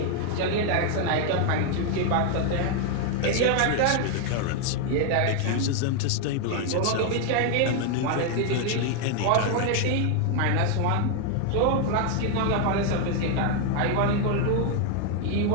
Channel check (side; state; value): both; different; correlation 0.00